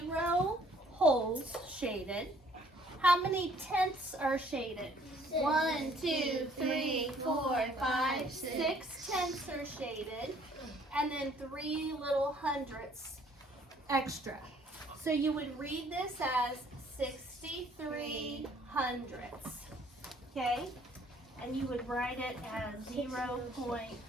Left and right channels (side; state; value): both; normal; correlation 0.60